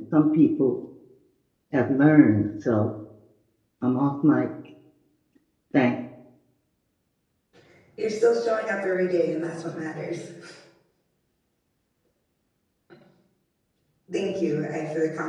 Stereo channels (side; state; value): both; identical; correlation 1.00